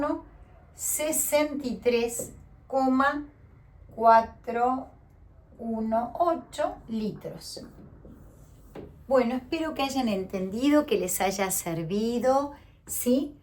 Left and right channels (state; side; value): identical; both; correlation 1.00